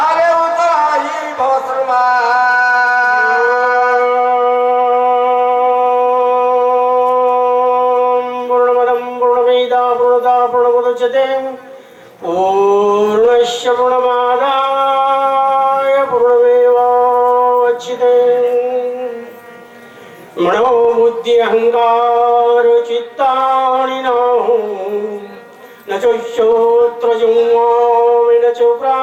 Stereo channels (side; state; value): both; identical; correlation 1.00